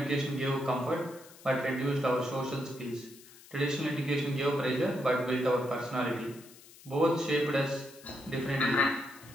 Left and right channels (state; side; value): noise; left; hiss, 21 dB below the sound